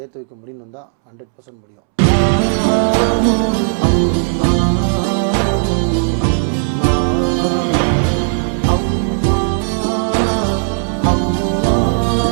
வைக்க முடியும்னு தான் 100% முடியும்.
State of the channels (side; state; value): left; silent; 69 dB below the other